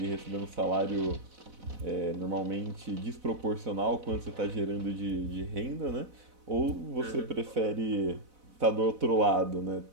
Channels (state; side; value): late; left; 4.0 ms